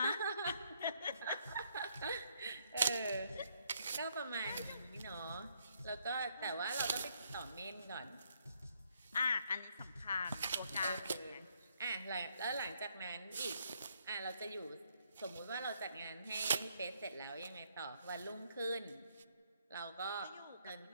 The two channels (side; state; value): both; inverted; correlation -0.72